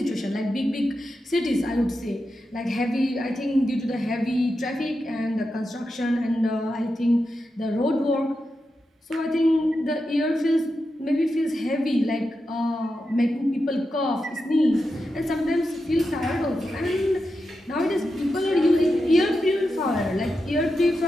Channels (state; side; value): normal; both; correlation 0.89